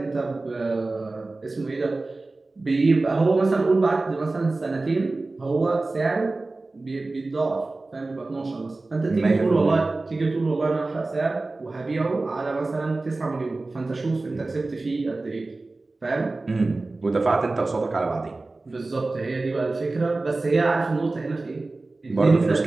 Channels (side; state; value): left; quieter; 3.3 dB